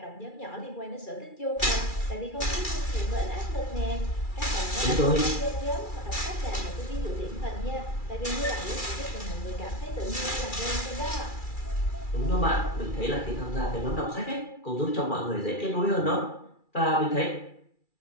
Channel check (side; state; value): right; late; 2.4 ms